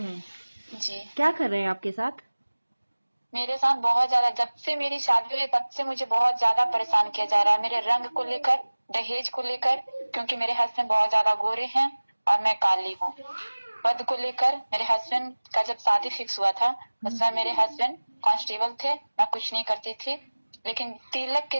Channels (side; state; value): both; inverted; correlation -1.00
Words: जी। क्या कर रहे हैं आपके साथ? मेरे साथ बहुत ज्यादा, जब से मेरी शादी हुई तब से मुझे बहुत ज्यादा परेशान किया जा रहा है, मेरे रंग को लेकर, दहेज को लेकर, क्योंकि मेरे हस्बैंड बहुत ज्यादा गोरे हैं और मैं काली हूँ। पद को लेकर मेरे हस्बैंड का जब शादी फिक्स हुआ था उस समय मेरे हस्बैंड कांस्टेबल थे, मैं कुछ नहीं करती थी। लेकिन तिलक के